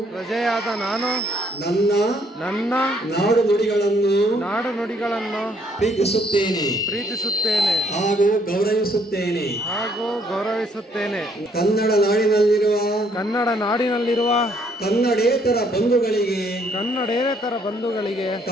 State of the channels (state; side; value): normal; both; correlation 0.67